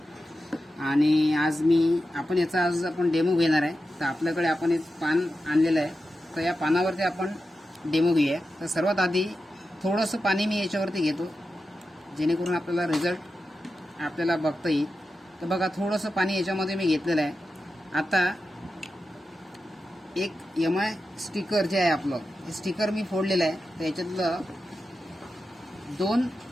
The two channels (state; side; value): normal; both; correlation 0.91